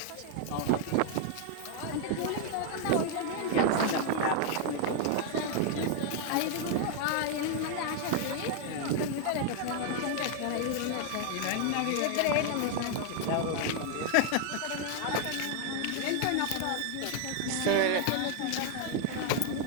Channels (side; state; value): both; different; correlation 0.00